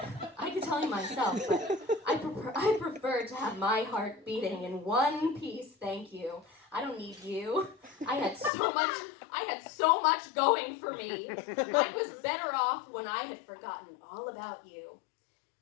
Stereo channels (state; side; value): drops out; right; at 8.5 s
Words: but I prefer to have my heart beating in one piece, thank you. I don't need you. I had so much going for me. I was better off when I had forgotten all about you.